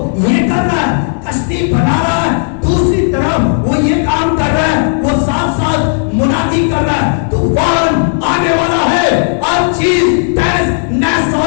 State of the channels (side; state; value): right; silent; 70 dB below the other